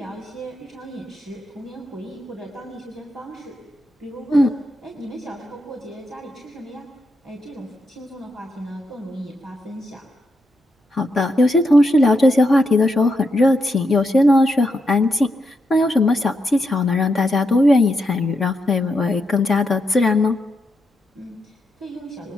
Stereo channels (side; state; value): both; normal; correlation 0.82